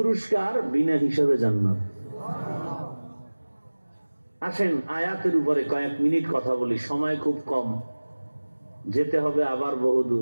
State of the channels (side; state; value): both; inverted; correlation -1.00